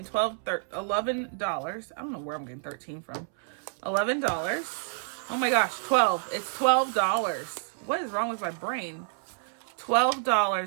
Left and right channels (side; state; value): left; silent; 59 dB below the other